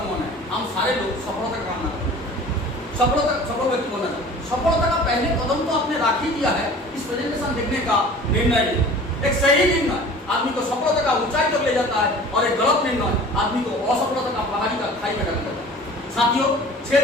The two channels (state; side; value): normal; both; correlation 0.44